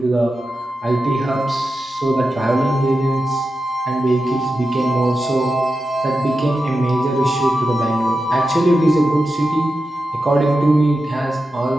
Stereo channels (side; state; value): both; normal; correlation 0.90